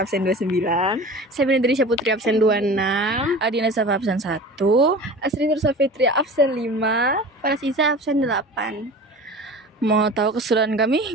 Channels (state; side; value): normal; both; correlation 0.37